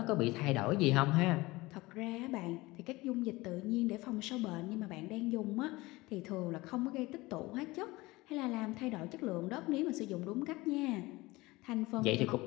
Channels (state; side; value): quieter; right; 21.0 dB